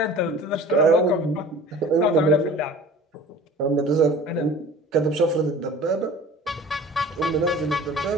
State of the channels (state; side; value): normal; both; correlation 0.43